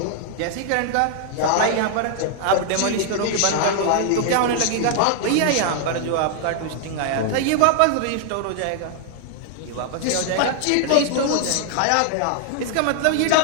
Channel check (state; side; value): different; both; correlation 0.00